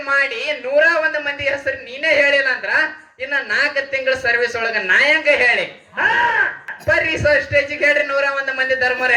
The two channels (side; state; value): both; identical; correlation 1.00